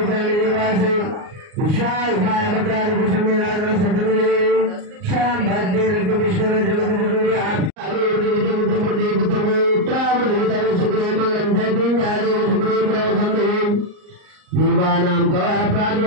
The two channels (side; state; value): left; late; 38 ms